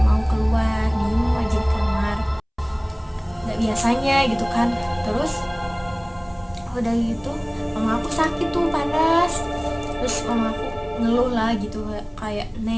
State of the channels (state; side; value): identical; both; correlation 1.00